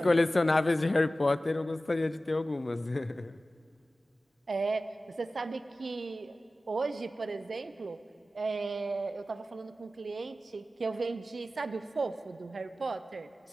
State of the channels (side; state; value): both; normal; correlation 0.95